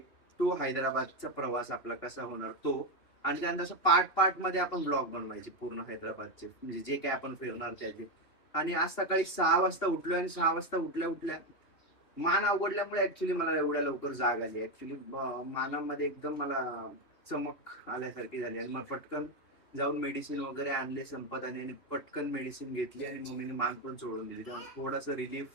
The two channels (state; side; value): late; right; 2.8 ms